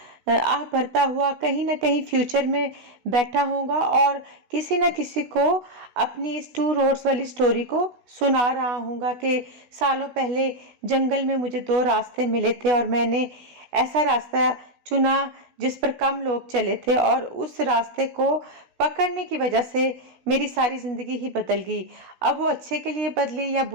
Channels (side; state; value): left; late; 16 ms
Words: آہ بھرتا ہوا کہیں نہ کہیں فیوچر میں بیٹھا ہوں گا اور کسی نہ کسی کو اپنی اس ٹو روڈز والی سٹوری کو سنا رہا ہوں گا کہ سالوں پہلے جنگل میں مجھے دو راستے ملے تھے اور میں نے ایسا راستہ چنا جس پر کم لوگ چلے تھے، اور اس راستے کو پکڑنے کی وجہ سے میری ساری زندگی ہی بدل گئی۔ اب وہ اچھے کے لیے بدلی یا